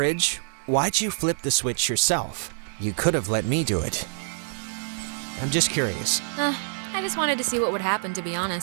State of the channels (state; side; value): silent; left; digital silence